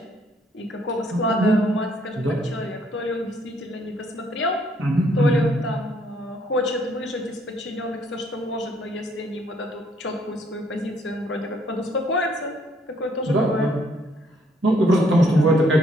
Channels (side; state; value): both; normal; correlation 0.67